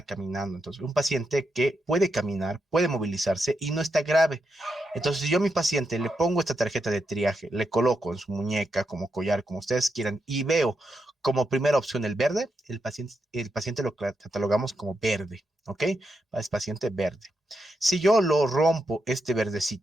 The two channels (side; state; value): both; normal; correlation 0.84